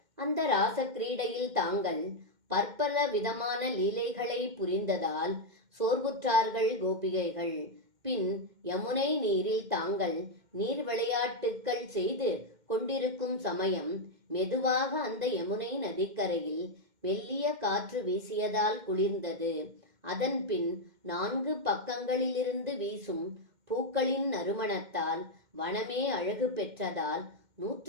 அந்த ராச கிரீடையில் தாங்கள் பற்பல விதமான லீலைகளை புரிந்ததால் சோர்வுற்றார்கள் கோபிகைகள். பின் யமுனை நீரில் தாங்கள் நீர் விளையாட்டுக்கள் செய்து கொண்டிருக்கும் சமயம் மெதுவாக அந்த யமுனை நதிக்கரையில் மெல்லிய காற்று வீசியதால் குளிர்ந்தது. அதன் பின் 4 பக்கங்களிலிருந்து வீசும் பூக்களின் நறுமணத்தால் வனமே அழகு பெற்றதால்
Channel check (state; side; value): late; left; 2.1 ms